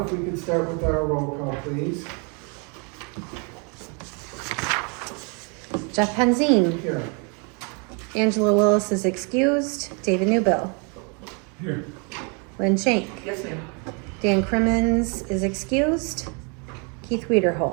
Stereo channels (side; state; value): left; quieter; 35.1 dB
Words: if we could start with our roll call, please. Jeff Penzine. Here. Angela Willis is excused. David Newbill. Here. Lynn Shank. Yes, ma'am. Dan Crimmins is excused. Keith